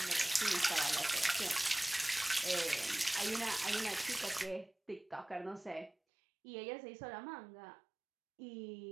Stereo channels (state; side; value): drops out; left; at 6.0 s